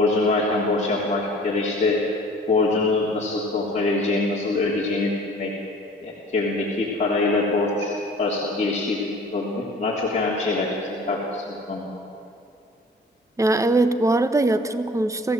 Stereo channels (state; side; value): normal; both; correlation 0.48